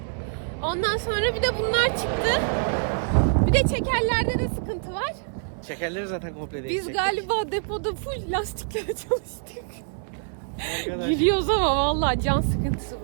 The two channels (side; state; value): left; silent; 61 dB below the other